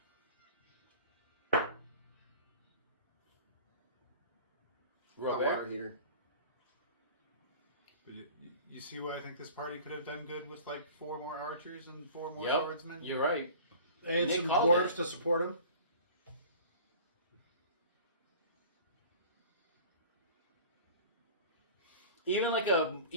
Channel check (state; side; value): inverted; both; correlation -0.42